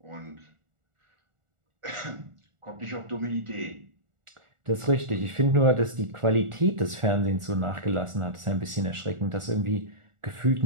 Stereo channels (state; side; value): late; left; 1.4 ms